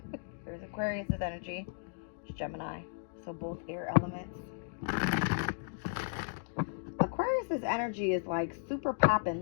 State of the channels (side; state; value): right; silent; digital silence